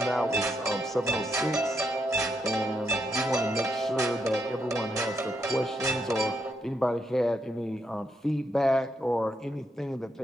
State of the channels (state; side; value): normal; both; correlation 0.80